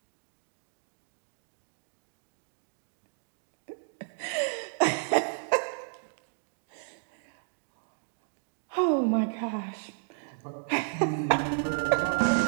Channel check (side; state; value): left; silent; digital silence